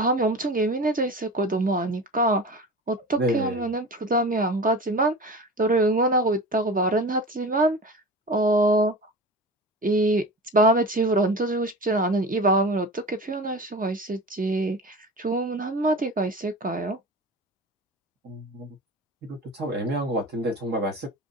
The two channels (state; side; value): normal; both; correlation 0.33